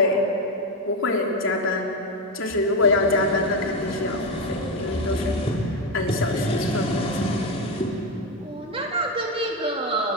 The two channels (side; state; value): both; normal; correlation 0.10